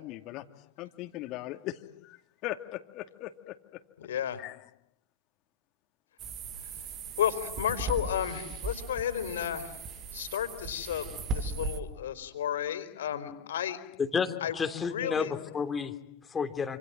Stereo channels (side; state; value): right; quieter; 6.0 dB